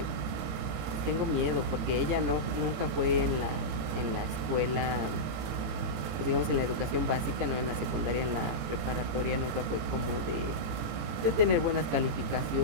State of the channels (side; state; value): left; late; 18 ms